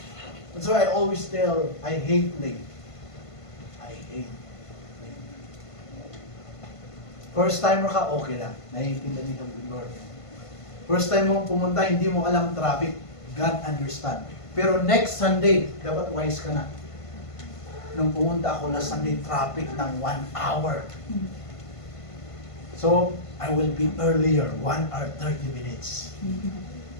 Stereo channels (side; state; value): right; late; 1.5 ms